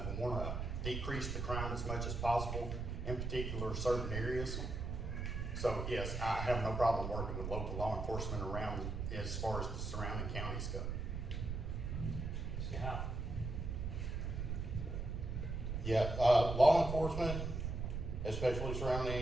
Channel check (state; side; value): noise; right; rumble, 3 dB below the sound